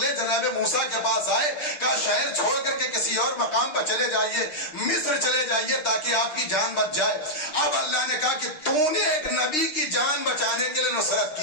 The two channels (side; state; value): right; late; 6.6 ms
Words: جناب موسیٰ کے پاس آئے، کہا شہر چھوڑ کر کے کسی اور مقام پر چلے جائیے، مصر چلے جائیے تاکہ آپ کی جان بچ جائے۔ اب اللہ نے کہا کہ تو نے ایک نبی کی جان بچانے کے لیے نصرت